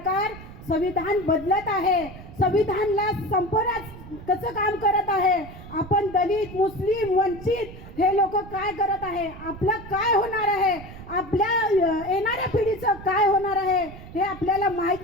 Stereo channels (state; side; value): noise; right; rumble, 15 dB below the sound